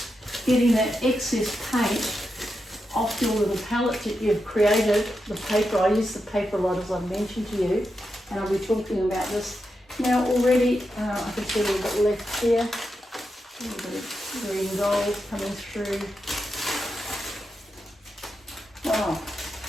getting that excess paint off your little palette that you've created, the paper. I use the paper a lot, as I mentioned to you, and I'll be talking about this. Now already, I can see a little bit left here, a little bit of green gold coming through. Wow,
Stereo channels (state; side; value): normal; both; correlation 0.87